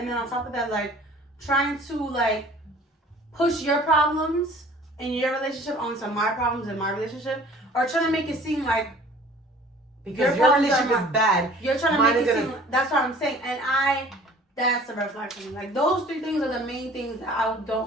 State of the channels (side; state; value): both; normal; correlation 0.50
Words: then on top of that, like trying to like push your problems in your relationship onto my problems in my relationship, or trying to make it seem like because your relationship is bad. You're trying to make it seem like, that's what I'm saying. And that's a red flag for me. Like those three things are the main things that I